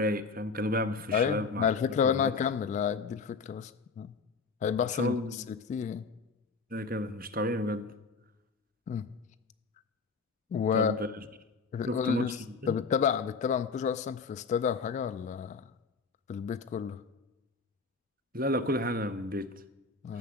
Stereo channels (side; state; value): right; quieter; 4.6 dB